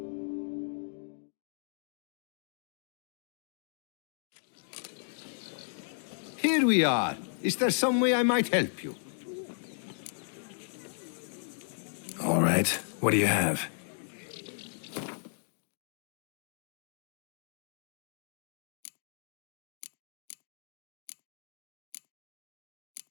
Here we are. Is there some way I might help you? All right. What do you have?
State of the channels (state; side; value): silent; right; digital silence